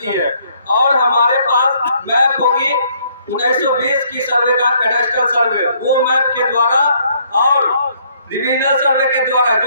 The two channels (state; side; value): inverted; both; correlation -0.66